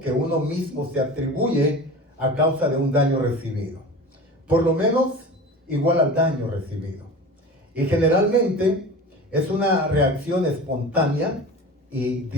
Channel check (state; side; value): normal; both; correlation 0.35